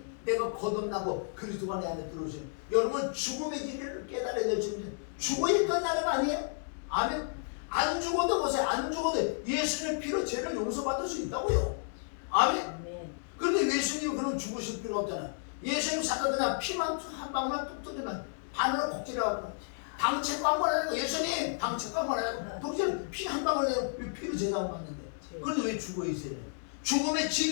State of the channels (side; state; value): right; silent; digital silence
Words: 내가 거듭나고 그리스도가 내 안에 들어오세요. 여러분 죽음의 진리를 깨달아야 될 줄인데 죽어야 끝나는 거 아니에요? 아멘. 안 죽어도 보세요. 안 죽어도 예수님의 피로 죄를 용서받을 수 있다고요. 아멘. 그런데 예수님이 그럼 죽으실 필요가 없잖아요. 예수님 사도 그냥 피만 한 방울만 뚝 뜨면 반으로 곡질해갖고 방책도 한번 하고 예수님 방책도 한번 하고 독질 피 한 방울 내요. 왜 피로 제사하고 받는데 그런데 왜 죽어 있어요? 죽음의